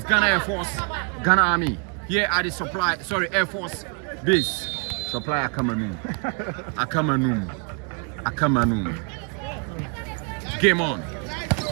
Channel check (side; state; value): left; quieter; 37.0 dB